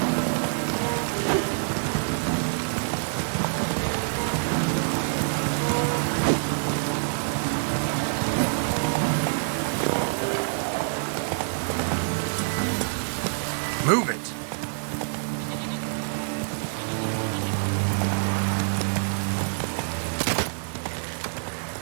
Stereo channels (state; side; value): silent; left; digital silence